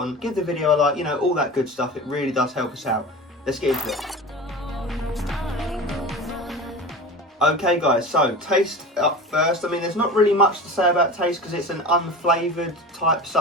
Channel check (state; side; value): normal; both; correlation 0.32